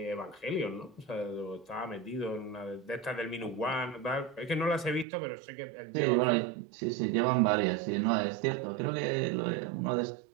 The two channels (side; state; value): left; drops out; at 5.1 s